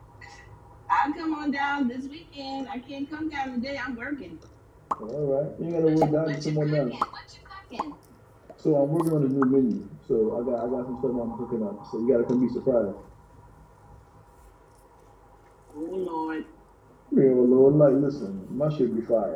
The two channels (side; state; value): both; identical; correlation 1.00